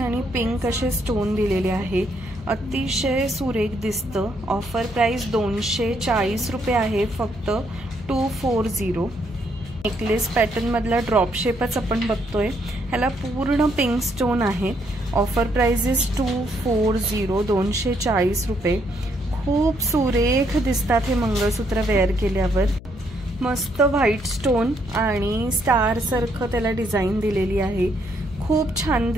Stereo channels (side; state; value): left; noise; hum, 17 dB below the sound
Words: पिंक असे स्टोन दिलेले आहे. अतिशय सुरेख दिसतं. ऑफर प्राइस 240 रुपये आहे फक्त, 240. नेकलेस पॅटर्न मधला ड्रॉप शेपच आपण बघतोय. ह्याला पूर्ण पिंक स्टोन आहे. ऑफर प्राइस इज 240, 240 रुपये. खूप सुरेख दिसतात हे मंगळसूत्र वेअर केल्यावर. मस्त व्हाईट स्टोन आणि स्टार सारखं त्याला डिझाईन दिलेली आहे. खूप छान